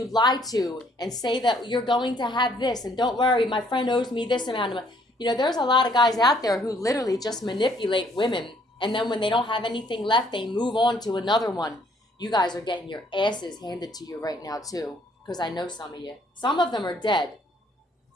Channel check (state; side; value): normal; both; correlation 0.64